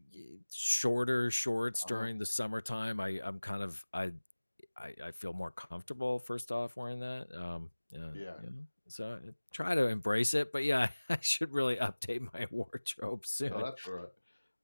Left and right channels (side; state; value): both; inverted; correlation -1.00